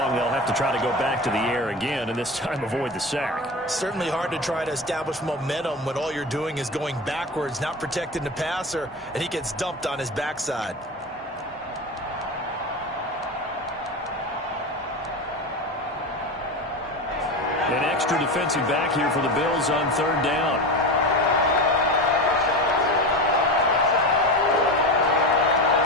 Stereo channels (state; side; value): normal; both; correlation 0.24